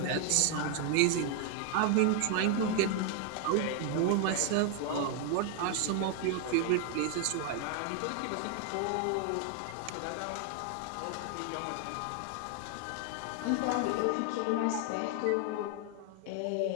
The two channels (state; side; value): different; both; correlation 0.00